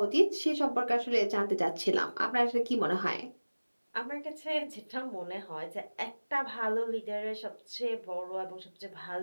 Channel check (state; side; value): inverted; both; correlation -1.00